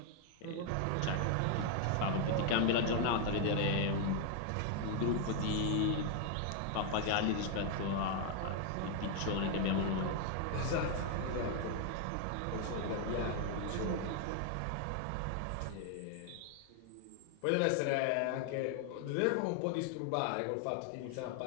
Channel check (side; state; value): both; different; correlation 0.00